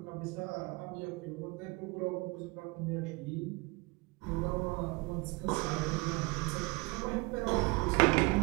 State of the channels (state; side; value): quieter; left; 25.8 dB